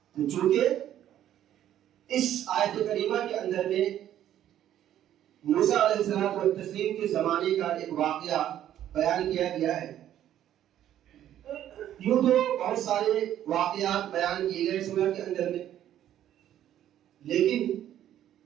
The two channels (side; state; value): left; quieter; 11.5 dB